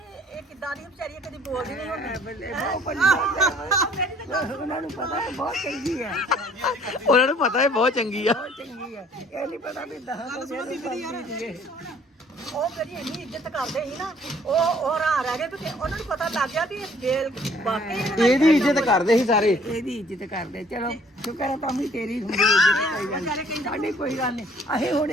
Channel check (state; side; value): normal; both; correlation 0.58